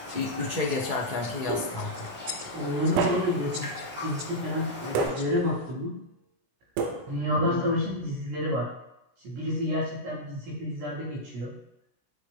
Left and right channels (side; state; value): left; late; 17 ms